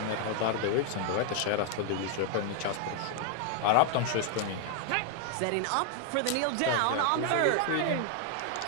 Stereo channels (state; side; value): different; both; correlation 0.00